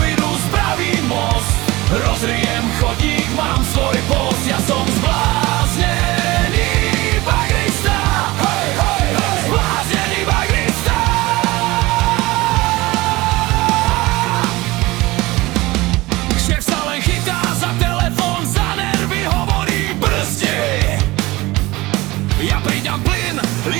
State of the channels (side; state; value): left; quieter; 20.5 dB